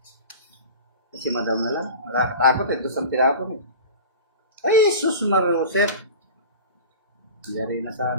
Si madam na lang. Nakakatakot eh. Doon ang tinapon eh. Ay, sus Marusep. Yari na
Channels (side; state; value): both; inverted; correlation -0.35